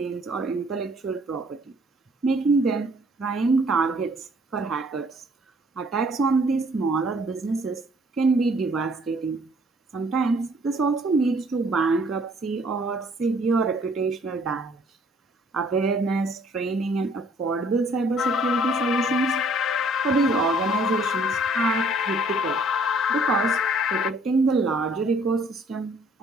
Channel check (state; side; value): normal; both; correlation 0.60